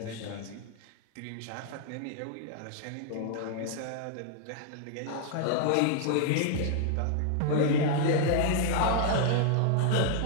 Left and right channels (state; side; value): different; both; correlation 0.00